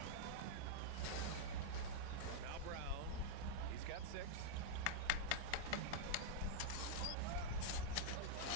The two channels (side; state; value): both; different; correlation -0.02